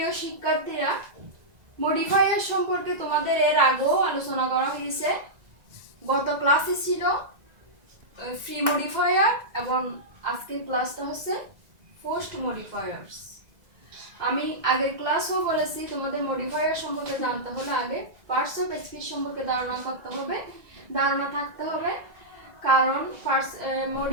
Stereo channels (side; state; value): left; late; 2.0 ms